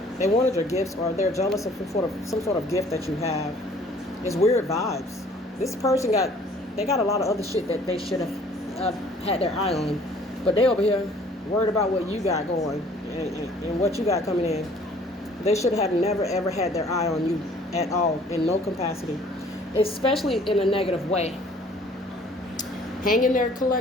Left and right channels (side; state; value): both; normal; correlation 0.55